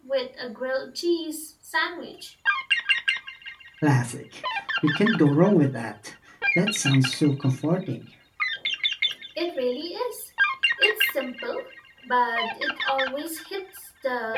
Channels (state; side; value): identical; both; correlation 1.00